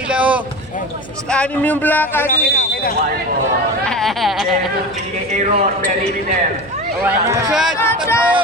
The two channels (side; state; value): right; noise; hum, 22 dB below the sound